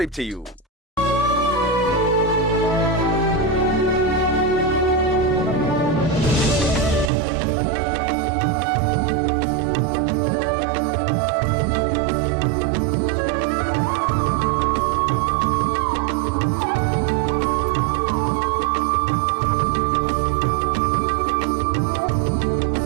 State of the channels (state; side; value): drops out; left; at 7.1 s